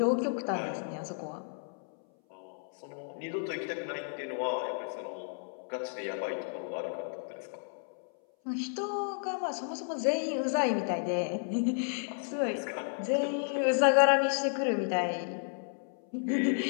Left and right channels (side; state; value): right; silent; 56 dB below the other